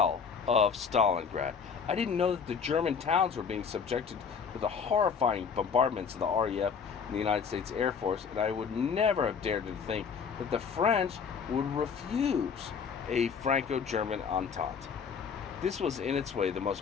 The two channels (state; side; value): quieter; right; 6.3 dB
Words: of Stalingrad. I didn't know that the German towns were being subjected to the horrifying bombardments of the RAF and the United States Air Force, and I would never have dared to think that the French would refuse a Franco-German entente. This was in its way the